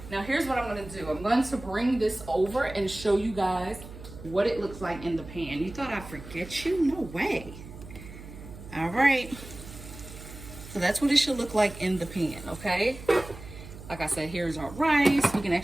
Now here's what I'm gonna do. I'm going to bring this over and show you guys what it looks like in the pan. You thought I'd forget you? No way. All right. So that's what it should look like in the pan, okay? Like I said, here's our rice. We can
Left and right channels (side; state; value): right; noise; hum, 14 dB below the sound